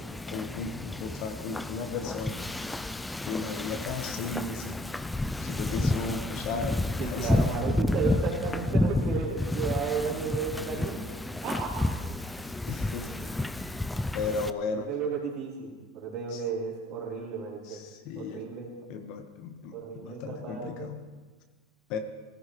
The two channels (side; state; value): both; normal; correlation 0.64